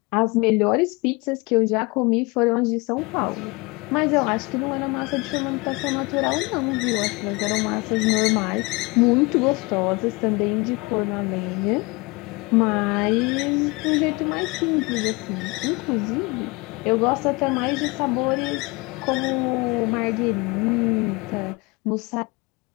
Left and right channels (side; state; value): right; quieter; 25.7 dB